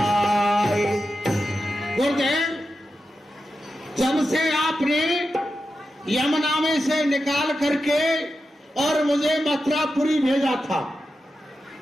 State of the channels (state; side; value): normal; both; correlation 0.90